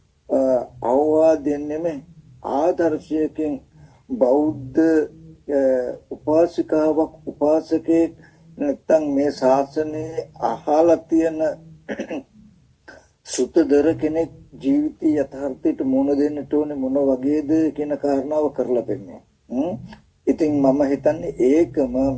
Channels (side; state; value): both; identical; correlation 1.00